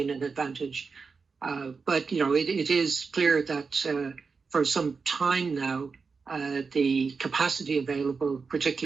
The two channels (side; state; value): left; quieter; 4.9 dB